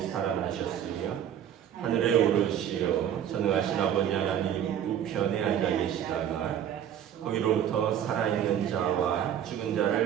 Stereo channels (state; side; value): quieter; left; 9.9 dB